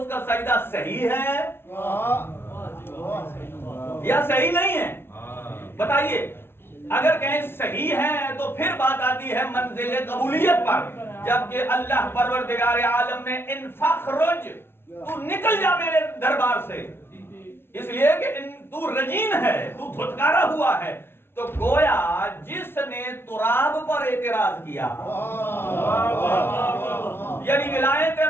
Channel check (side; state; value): right; late; 0.11 ms